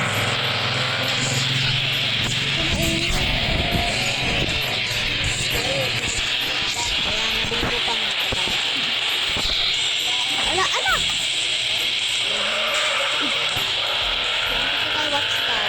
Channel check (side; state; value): both; identical; correlation 1.00